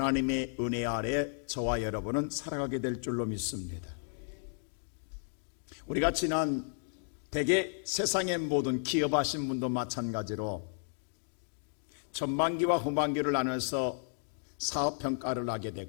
은혜 아래 저와 여러분은 살아가게 될 줄로 믿습니다. 우리가 지난 대개 세상의 모든 기업하신 분도 마찬가지로 전반기와 후반기를 나눠서 사업 평가를 하게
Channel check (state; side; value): silent; right; digital silence